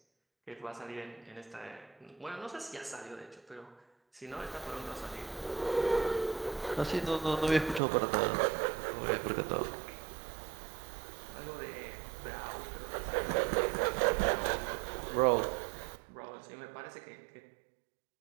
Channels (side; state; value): left; drops out; at 7.8 s